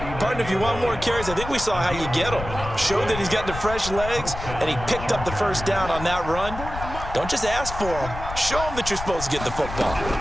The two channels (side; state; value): left; noise; rumble, 9 dB below the sound